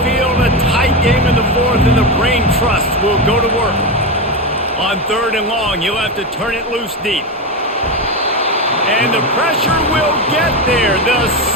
field, a tight game in the fourth, and the brain trust will go to work. On third and long, you'll have to turn it loose deep. And the pressure will get there. The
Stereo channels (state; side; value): normal; both; correlation 0.15